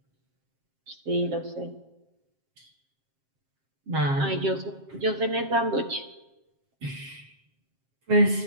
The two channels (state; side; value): late; left; 7.5 ms